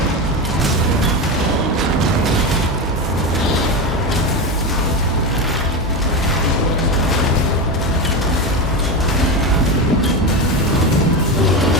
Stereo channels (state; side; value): normal; both; correlation 0.17